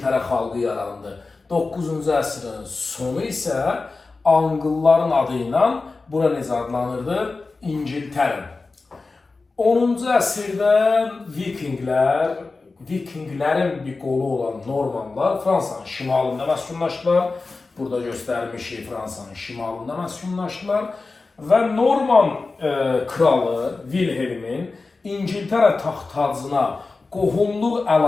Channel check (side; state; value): right; quieter; 3.8 dB